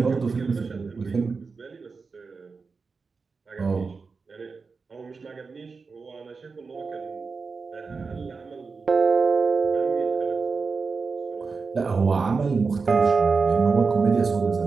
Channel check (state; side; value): quieter; left; 4.7 dB